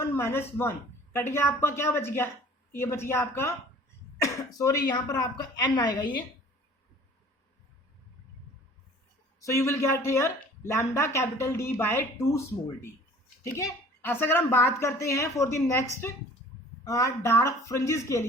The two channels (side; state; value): both; normal; correlation 0.49